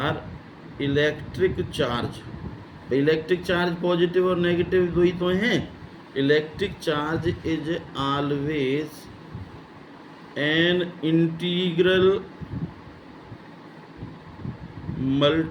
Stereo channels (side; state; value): both; identical; correlation 1.00